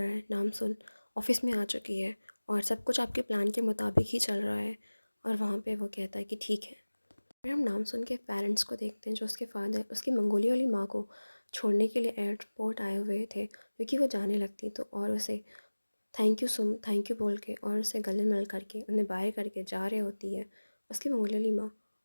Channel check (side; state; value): both; inverted; correlation -1.00